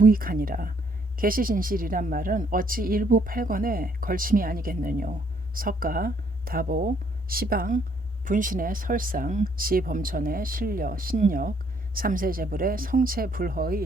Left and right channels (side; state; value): both; normal; correlation 0.67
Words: 계시진실이란 말은 어찌 일부 팔권에 걸침이 아니겠느뇨. 석가, 다보, 시방, 분신의 설상, 지범천의 신력, 삼세제불의